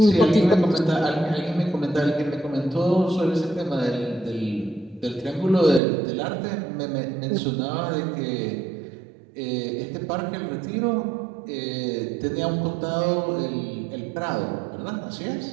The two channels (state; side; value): drops out; left; at 5.8 s